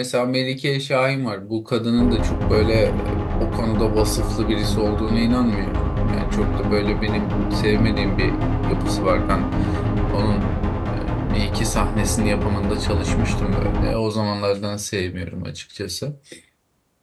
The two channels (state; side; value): identical; both; correlation 1.00